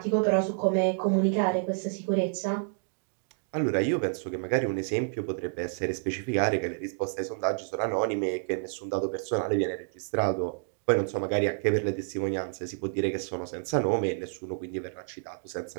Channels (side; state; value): left; silent; digital silence